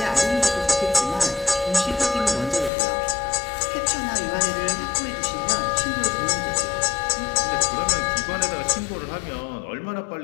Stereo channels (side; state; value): right; drops out; at 2.7 s